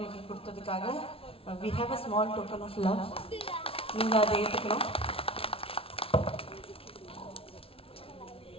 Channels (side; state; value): right; late; 0.26 ms